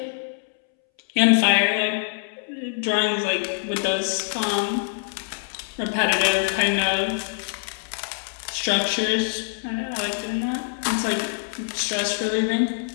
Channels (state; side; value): silent; right; 62 dB below the other